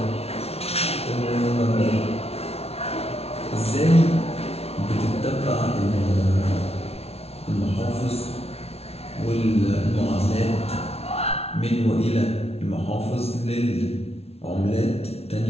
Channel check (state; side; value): late; right; 0.30 ms